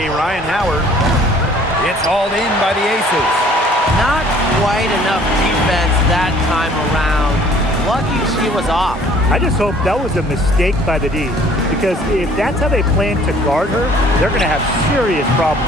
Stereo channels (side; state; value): both; normal; correlation 0.55